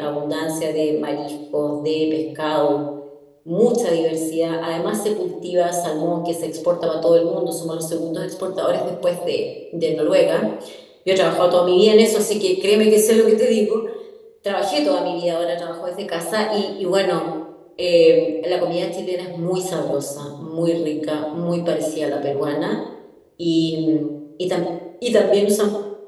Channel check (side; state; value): both; identical; correlation 1.00